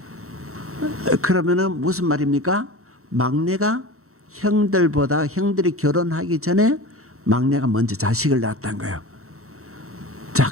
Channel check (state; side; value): late; left; 0.64 ms